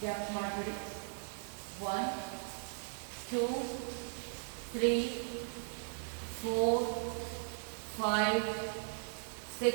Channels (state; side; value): silent; left; digital silence